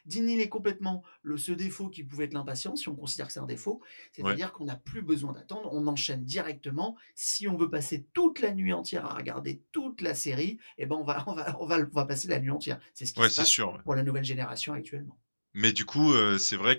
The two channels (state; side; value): inverted; both; correlation -1.00